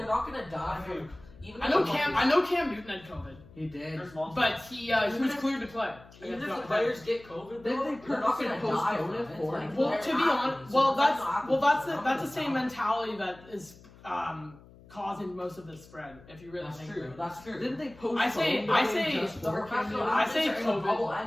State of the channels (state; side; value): noise; left; hum, 23 dB below the sound